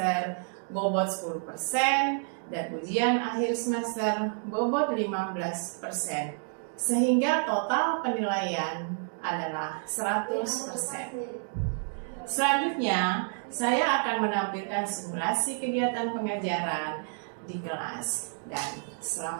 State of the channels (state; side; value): silent; left; 58 dB below the other